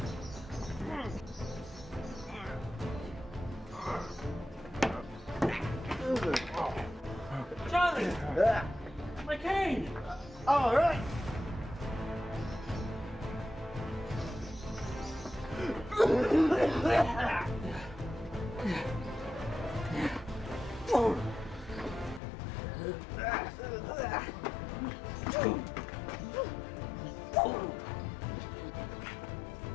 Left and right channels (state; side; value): drops out; right; at 22.2 s